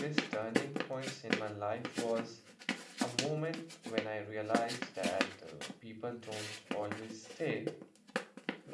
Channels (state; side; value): identical; both; correlation 1.00